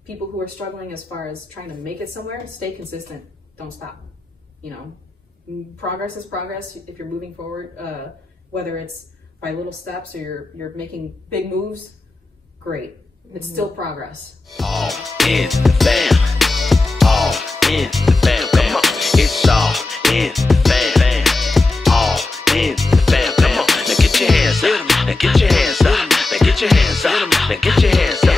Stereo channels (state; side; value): quieter; right; 3.2 dB